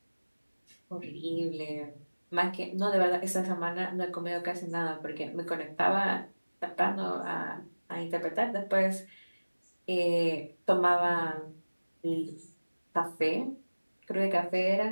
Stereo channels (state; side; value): inverted; both; correlation -1.00